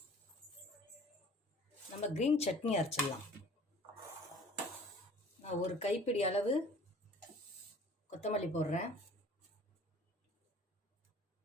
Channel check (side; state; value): both; normal; correlation 0.49